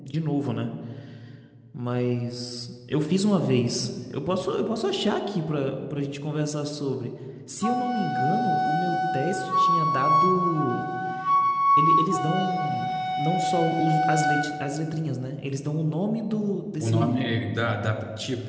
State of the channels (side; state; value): both; identical; correlation 1.00